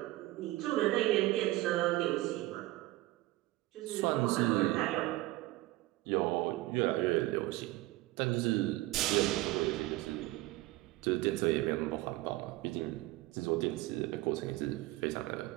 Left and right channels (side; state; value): left; quieter; 18.4 dB